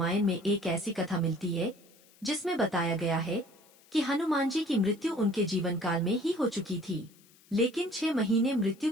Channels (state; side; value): noise; left; hiss, 28 dB below the sound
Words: में एक ऐसी कथा मिलती है जिसमें बताया गया है कि हनुमान जी की मृत्यु उनके जीवन काल में ही हो चुकी थी, लेकिन 6 महीने मृत्यु